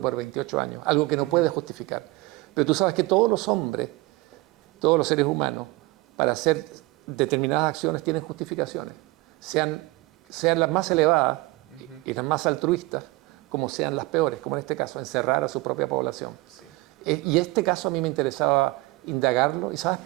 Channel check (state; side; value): quieter; left; 21.4 dB